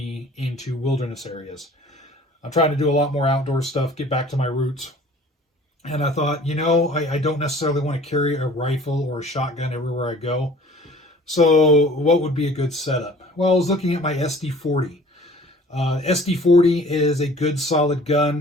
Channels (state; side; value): normal; both; correlation 0.49